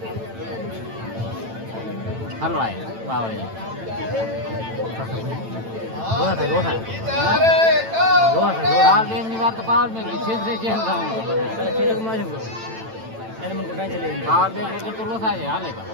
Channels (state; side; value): late; left; 9.0 ms